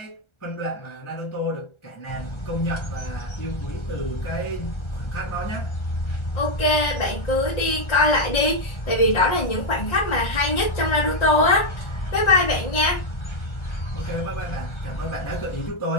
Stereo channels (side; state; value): right; late; 1.4 ms